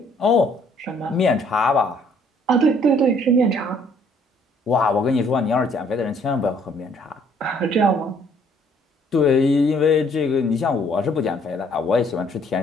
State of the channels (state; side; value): normal; both; correlation 0.63